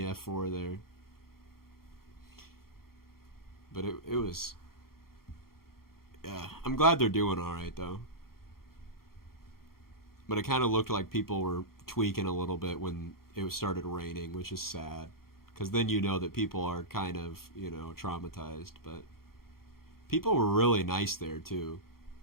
there. But it was. Yeah, I'm glad they're doing alright, though. But it kind of looked like people were tweaking a little bit when it started raining, which is sad. Because then you know that people are kind of, you know, traumatized. But people were really nice there, too.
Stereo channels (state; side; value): late; right; 0.93 ms